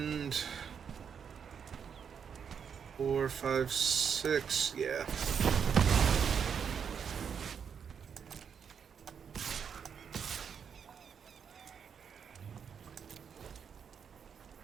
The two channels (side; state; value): left; quieter; 7.1 dB